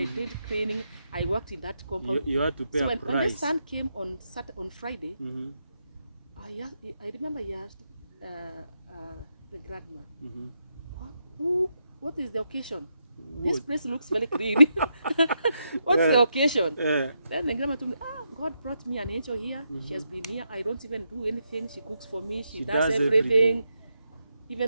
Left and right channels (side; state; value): both; inverted; correlation -0.83